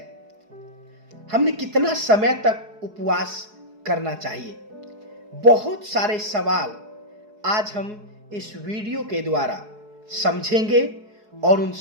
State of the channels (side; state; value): left; late; 4.7 ms